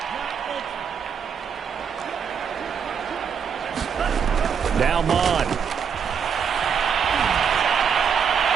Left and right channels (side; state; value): left; quieter; 7.0 dB